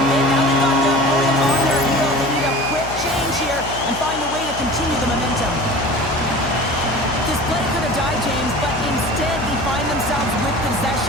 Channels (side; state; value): left; noise; hum, 11 dB below the sound